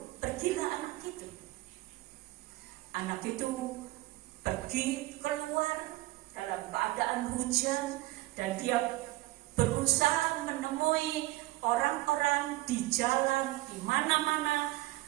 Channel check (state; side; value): quieter; left; 18.9 dB